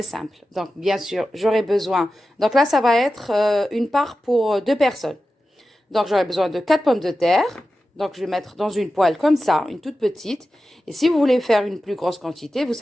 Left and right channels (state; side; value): normal; both; correlation 0.93